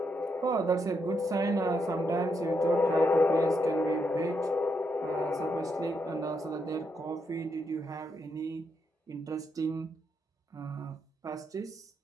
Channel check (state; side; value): normal; both; correlation 0.80